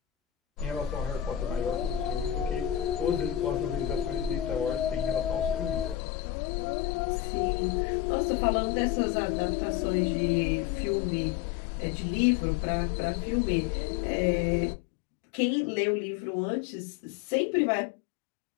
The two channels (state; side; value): drops out; right; at 6.0 s